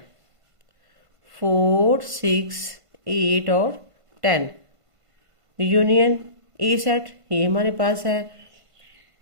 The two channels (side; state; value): left; late; 1.5 ms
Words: 4 6 8 और 10। यूनियन ए सेट ये हमारे पास है